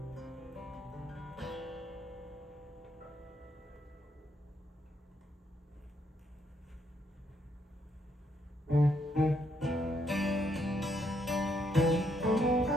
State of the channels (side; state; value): both; normal; correlation 0.75